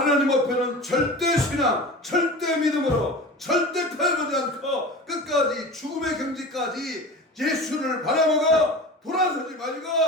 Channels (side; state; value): both; normal; correlation 0.33